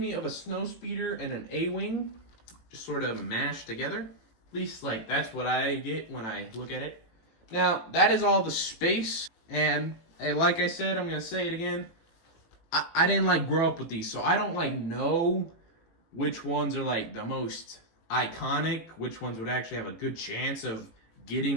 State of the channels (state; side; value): late; right; 18 ms